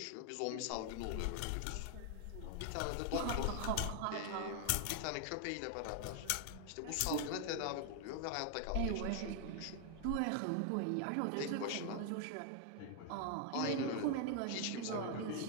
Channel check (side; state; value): both; different; correlation 0.00